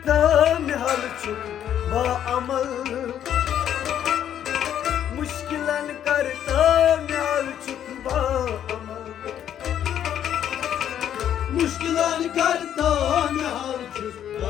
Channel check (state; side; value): quieter; right; 10.1 dB